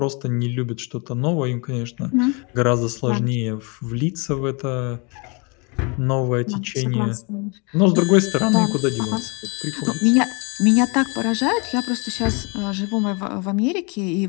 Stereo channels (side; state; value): right; quieter; 31.6 dB